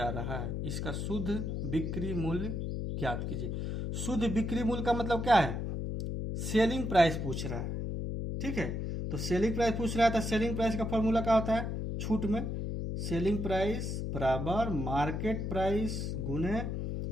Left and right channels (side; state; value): left; noise; hum, 3 dB below the sound